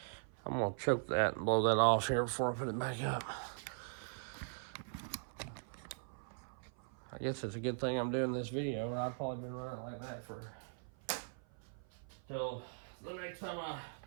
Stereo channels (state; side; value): silent; left; 51 dB below the other